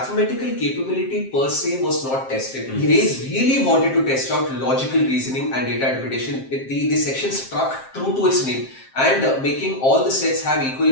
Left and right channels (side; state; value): right; late; 7.6 ms